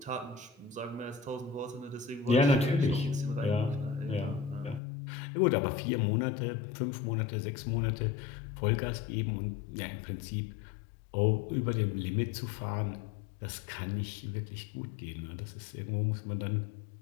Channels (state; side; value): drops out; right; at 4.8 s